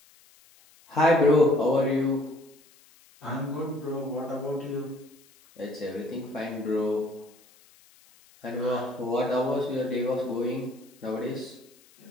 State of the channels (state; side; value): noise; left; hiss, 28 dB below the sound